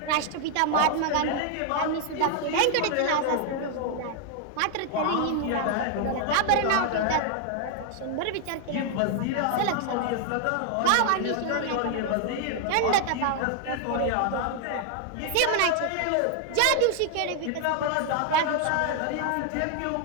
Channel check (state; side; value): different; both; correlation 0.00